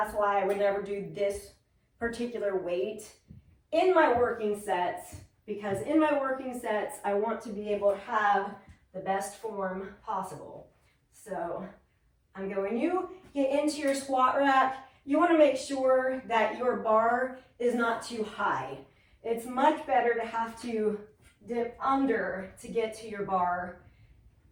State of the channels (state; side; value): identical; both; correlation 1.00